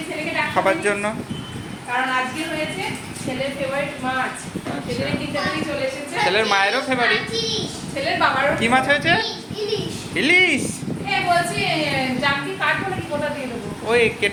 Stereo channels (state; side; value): identical; both; correlation 1.00